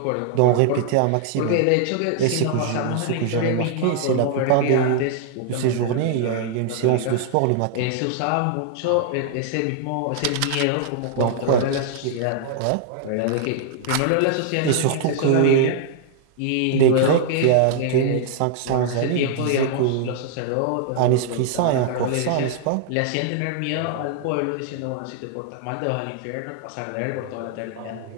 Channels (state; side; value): different; both; correlation -0.01